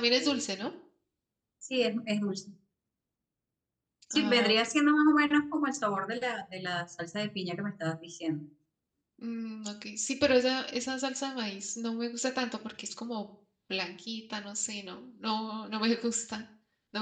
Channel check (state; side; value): identical; both; correlation 1.00